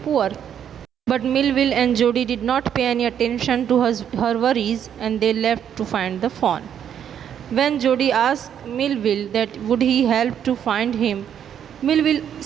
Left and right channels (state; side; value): quieter; left; 9.1 dB